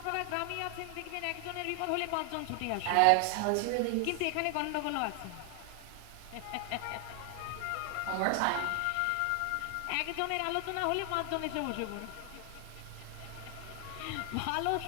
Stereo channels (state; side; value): different; both; correlation 0.00